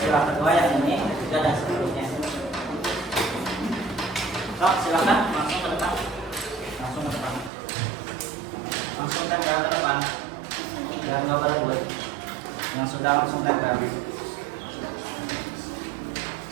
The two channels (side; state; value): left; drops out; at 7.5 s